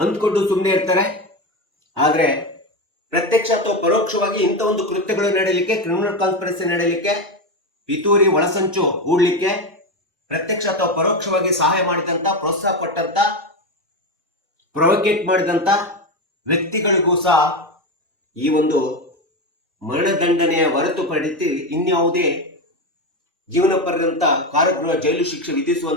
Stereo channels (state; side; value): normal; both; correlation 0.15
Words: ಸುಮ್ಮನೆ ಇರ್ತಾರೆ. ಆದ್ರೆ ಪ್ರತ್ಯಕ್ಷ ಅಥವಾ ಪರೋಕ್ಷವಾಗಿ ಇಂಥ ಒಂದು ಕೃತ್ಯಗಳು ನಡೆಯಲಿಕ್ಕೆ, ಕ್ರಿಮಿನಲ್ ಕಾನ್ಸ್ಪಿರಸಿ ನಡೆಯಲಿಕ್ಕೆ, ಪಿತೂರಿ ಒಳಸಂಚು ಹೂಡ್ಲಿಕ್ಕೆ ಪ್ರತ್ಯಕ್ಷ ಅಥವಾ ಪರೋಕ್ಷವಾಗಿ ಸಹಾಯ ಮಾಡಿದಂತ, ಪ್ರೋತ್ಸಾಹ ಕೊಟ್ಟಂತ, ಪ್ರೊವೋಕೇಟ್ ಮಾಡಿದಂತ ವ್ಯಕ್ತಿಗಳಿಗೂ ಸಹ ಈ ಒಂದು ಮರಣದಂಡನೆಯ ಹೊರತುಪಡಿಸಿ ಇನ್ಯಾವುದೇ ಜೀವನ ಪರ್ಯಂತ ಕಾರಾಗೃಹ ಜೈಲು ಶಿಕ್ಷೆ